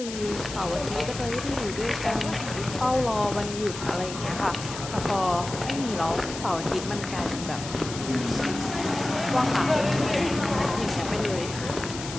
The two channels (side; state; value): left; noise; hiss, 10 dB below the sound